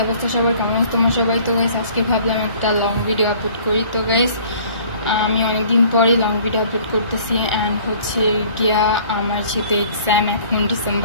অবস্থা সবার, কেমন আছো তোমরা সবাই? তো গাইস আজকে ভাবলাম একটা লং ভিডিও আপলোড করি। তো গাইস আমি অনেকদিন পরে লং ভিডিও আপলোড করতেছি অ্যান্ড হচ্ছে গিয়া আমার যেহেতু এক্সাম, এখন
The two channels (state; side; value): inverted; both; correlation -0.52